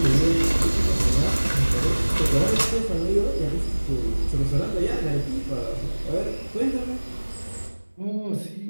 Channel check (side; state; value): both; inverted; correlation -1.00